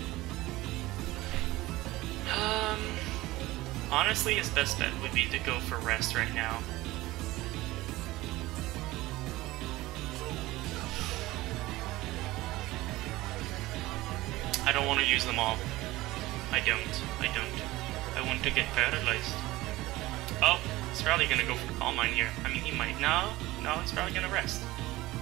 Honestly, his best bet would be to go for rest right now. I don't want to use them all. I don't. I want to get paralyzed. Oh, he's probably gonna go for Calm Mind here. I mean, he might. No, he's probably gonna rest.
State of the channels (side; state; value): left; quieter; 18.5 dB